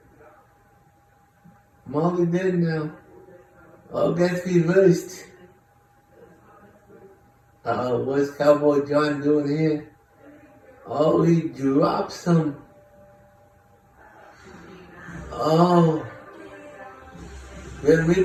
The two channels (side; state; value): both; identical; correlation 1.00